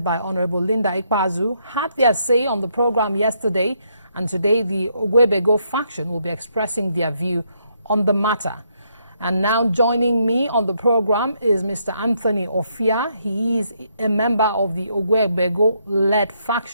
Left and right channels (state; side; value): inverted; both; correlation -0.75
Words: by Honorable Linda Ikpazu, had their say on the program yesterday And today, the Ogwebego faction will be expressing their view on the matter. And now joining me on the program is Mr. Anthony Ofia. He is a member of the Ogwebego-led